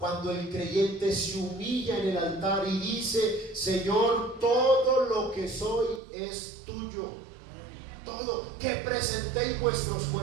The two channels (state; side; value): drops out; left; at 6.0 s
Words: el creyente se humilla en el altar y dice: Señor, todo lo que soy es tuyo. Todo. Que presentéis vuestros